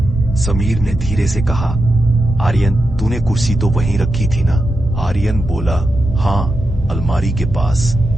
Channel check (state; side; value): normal; both; correlation 0.88